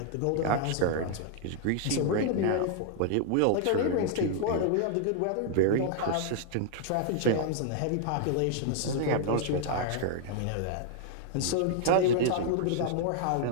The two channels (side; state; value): both; different; correlation -0.01